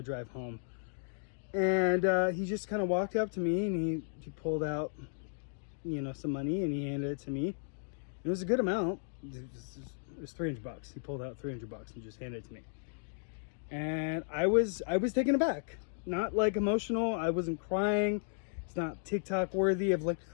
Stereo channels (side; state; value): right; silent; digital silence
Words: drive home. And he just kind of walked up to me, and he pulled out, some money, and he handed it to me. It was a good amount. It was $300. He pulled out $300 and just handed it to me. And I was taken aback. Not like emotional. I wasn't crying. It's not TikTok worthy of like,